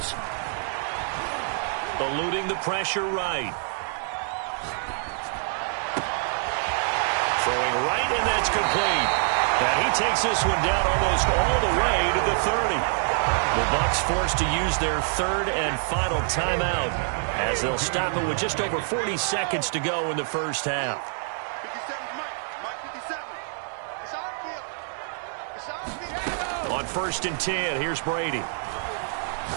Eluding the pressure right. Throwing right, and that's complete. And he takes this one down almost all the way to the 30. The Bucs forced to use their 3rd and final timeout as they'll stop it with just over 40 seconds to go in the first half. On 1st and 10, here's Brady.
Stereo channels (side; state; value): left; silent; 58 dB below the other